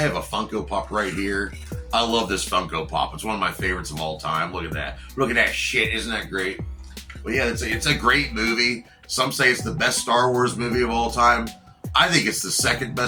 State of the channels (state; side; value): identical; both; correlation 1.00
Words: a Funko Pop right here. I love this Funko Pop. It's one of my favorites of all time. Look at that. Look at that shit. Isn't that great? Well, yeah, it's a great movie. Some say it's the best Star Wars movie of all time. I think it's the second